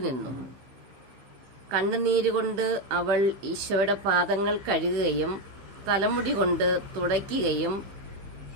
നിന്നു. കണ്ണുനീരുകൊണ്ട് അവൾ ഈശോയുടെ പാദങ്ങൾ കഴുകുകയും തലമുടി കൊണ്ട് തുടയ്ക്കുകയും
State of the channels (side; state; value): left; late; 15 ms